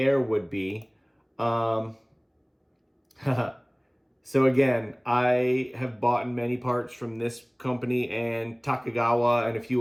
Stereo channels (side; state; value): both; identical; correlation 1.00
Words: would be. So again, I have bought many parts from this company and Takigawa and a